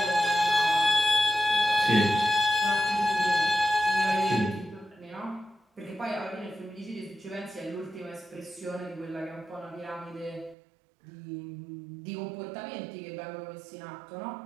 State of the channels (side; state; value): left; drops out; at 10.6 s